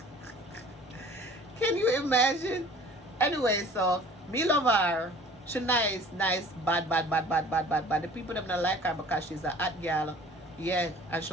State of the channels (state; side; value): normal; both; correlation 0.48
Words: Can you imagine? Anyway, so me love her. She nice, bad. The people them not like her because she's a hot girl. Yeah, and